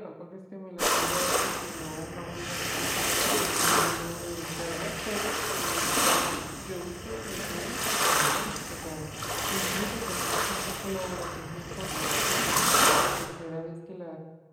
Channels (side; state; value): both; identical; correlation 1.00